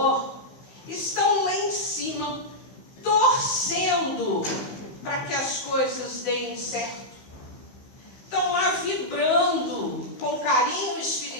estão lá em cima, torcendo para que as coisas deem certo. Estão lá vibrando com carinho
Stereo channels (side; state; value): right; late; 15 ms